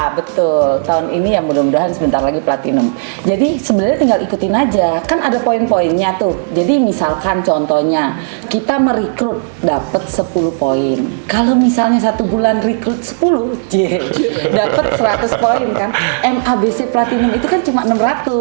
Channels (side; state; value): left; silent; digital silence